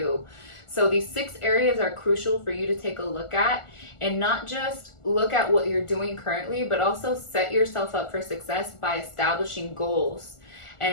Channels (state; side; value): late; right; 1.4 ms